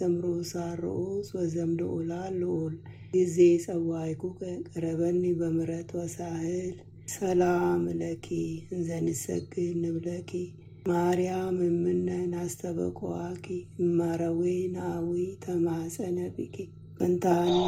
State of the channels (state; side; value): identical; both; correlation 1.00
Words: አርዑስ ወዘምልዑላን ልዑል ጊዜ ጸዋዕኩከ ቀረበኒ በምሕረት ወሳህል። ሰላም ለኪ እንዘ ንሰግድ ንብለኪ ማርያም እምነን አስተበቆዋኪ እማረዌ ናዊ ተማፀነ ብኪ መንታና